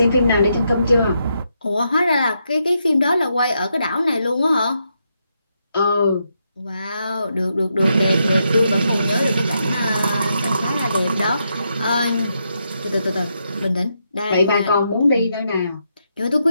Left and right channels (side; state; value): both; inverted; correlation -0.81